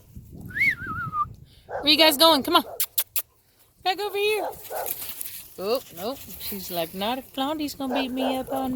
Where you guys going? Come on. Back over here. Oh, nope. She's like, not if Blondie's gonna beat me up all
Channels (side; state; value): both; identical; correlation 1.00